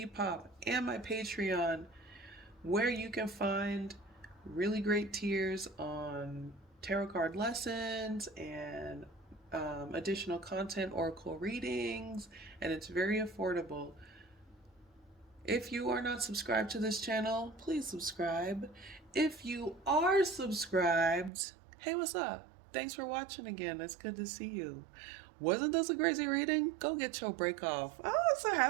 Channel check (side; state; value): left; drops out; at 21.3 s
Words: and my Patreon, where you can find really great tiers on tarot card lessons and additional content, oracle readings, and it's very affordable. If you are not subscribed to this channel, please subscribe. If you are subscribed, hey, what's up? Thanks for watching again. It's good to see you. Wasn't this a crazy reading? Go get your break off. Oh, I'm so